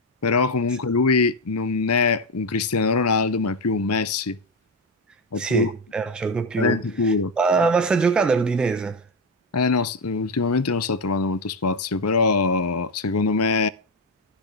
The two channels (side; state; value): both; normal; correlation 0.10